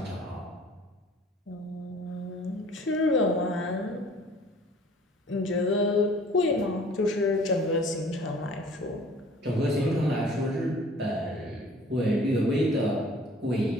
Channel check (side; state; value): both; normal; correlation 0.51